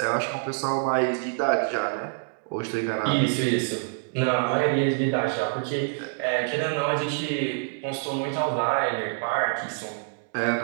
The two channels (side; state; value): left; silent; digital silence